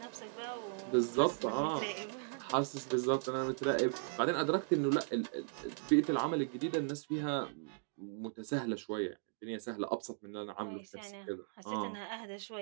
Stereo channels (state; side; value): silent; left; digital silence